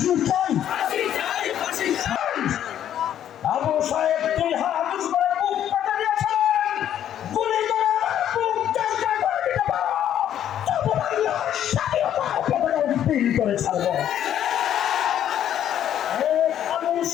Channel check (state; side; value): quieter; right; 10.6 dB